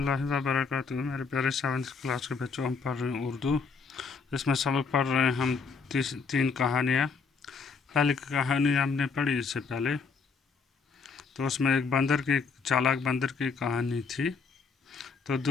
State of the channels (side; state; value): right; quieter; 5.0 dB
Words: وبرکاتہ میرے پیارے 7th کلاس کے بچوں، ہم پڑھ رہے ہیں اردو. اس میں سبق پڑھ رہے ہیں ہم تین کہانیاں. پہلی کہانی ہم نے پڑھی اس سے پہلے، تو اس میں ایک چالاک بندر کی کہانی تھی. تو